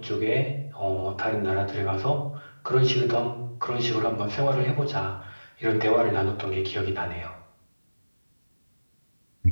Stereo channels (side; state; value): both; inverted; correlation -1.00